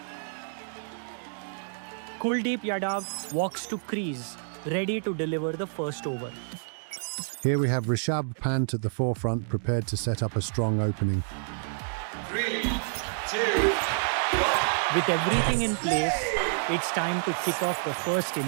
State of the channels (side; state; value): left; silent; digital silence